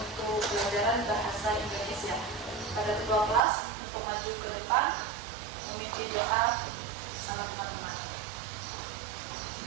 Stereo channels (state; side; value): drops out; left; at 3.4 s